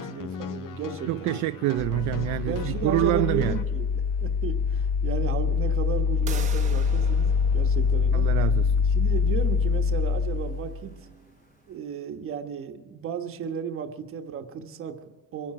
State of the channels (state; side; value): normal; both; correlation 0.37